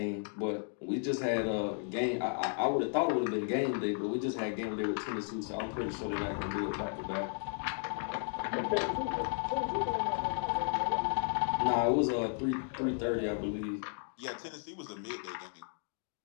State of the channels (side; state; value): right; silent; 55 dB below the other